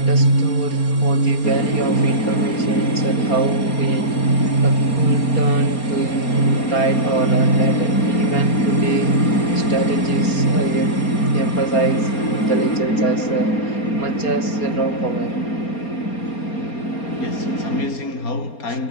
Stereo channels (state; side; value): late; right; 4.3 ms